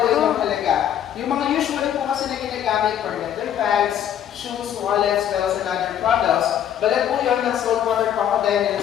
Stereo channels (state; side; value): quieter; right; 10.1 dB